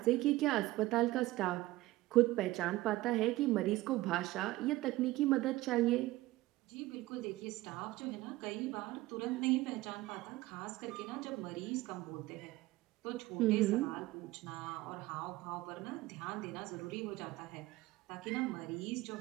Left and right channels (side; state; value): left; quieter; 18.2 dB